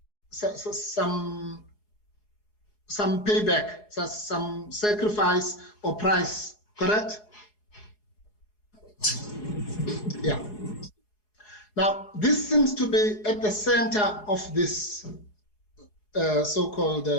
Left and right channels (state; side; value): late; right; 4.8 ms